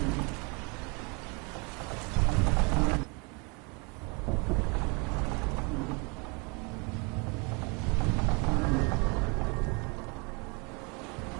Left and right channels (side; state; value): left; quieter; 31.2 dB